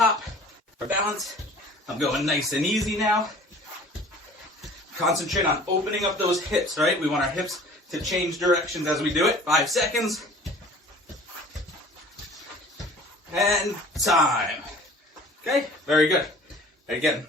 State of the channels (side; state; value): both; normal; correlation 0.47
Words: for balance. I'm going nice and easy now. Concentrate on opening up those hips, right? We want our hips to change directions as we do it. 5 seconds. And time. Okay, very good. Again,